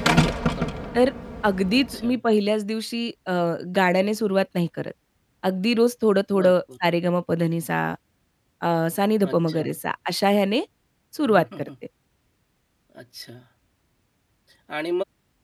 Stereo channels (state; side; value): identical; both; correlation 1.00